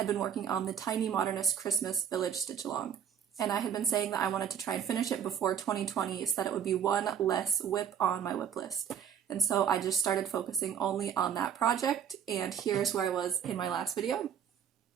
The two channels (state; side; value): quieter; left; 8.4 dB